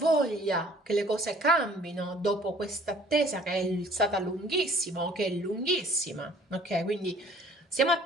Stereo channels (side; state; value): both; normal; correlation 0.54